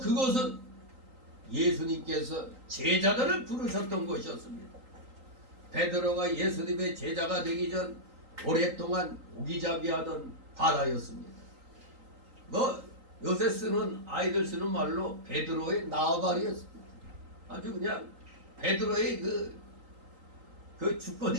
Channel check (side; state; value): left; late; 3.8 ms